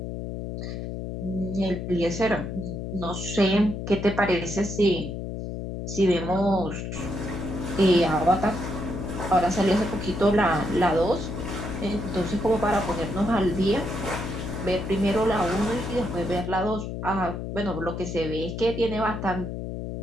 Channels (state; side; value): noise; left; hum, 6 dB below the sound